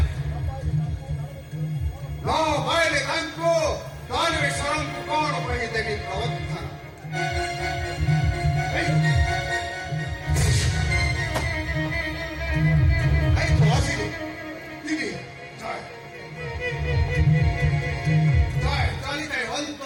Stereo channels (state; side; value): identical; both; correlation 1.00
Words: ନ ପାଇଲେ ତାଙ୍କୁ ଦାନବେଶ୍ୱରଙ୍କୁ କଣ କହିଦେବି ପ୍ରବର୍ତ୍ତନ। ଆସିଲେ ଦିଦି ଚାଲିଥାଏ